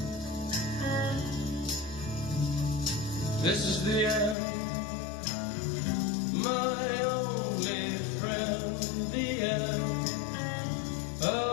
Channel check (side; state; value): right; drops out; at 4.4 s